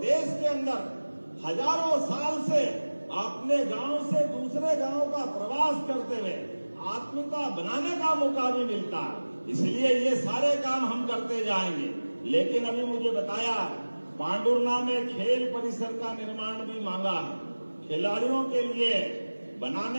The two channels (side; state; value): both; inverted; correlation -1.00